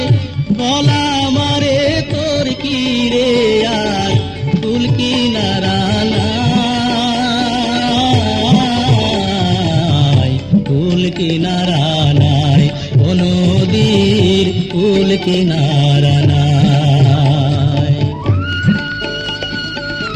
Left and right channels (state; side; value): identical; both; correlation 1.00